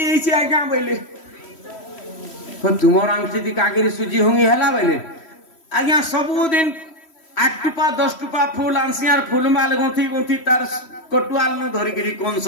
आज्ञा बोले तुमर आंखी कागिरी सुजी हुंगी है बोले आज्ञा सबुदिन 8 टुपा 10 टुपा फूल आंसियार फूलमाल गुंथी गुंथी तार कटुआल न धरिकी कंस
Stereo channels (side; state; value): right; late; 3.1 ms